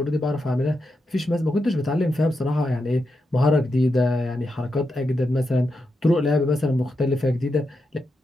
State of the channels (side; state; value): both; normal; correlation 0.86